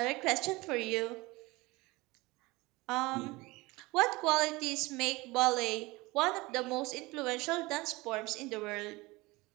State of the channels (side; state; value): left; quieter; 22.3 dB